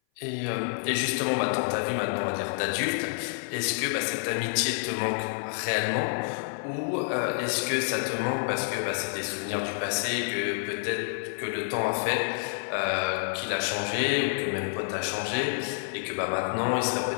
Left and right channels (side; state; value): right; silent; 57 dB below the other